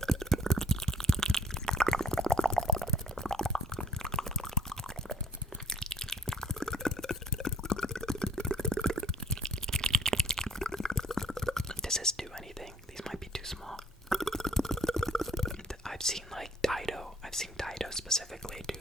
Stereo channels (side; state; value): both; normal; correlation 0.61